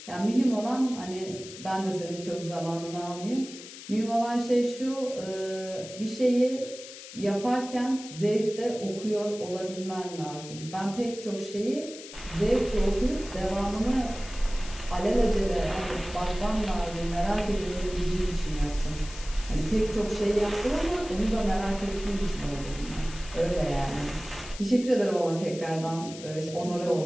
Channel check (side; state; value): left; noise; hiss, 14 dB below the sound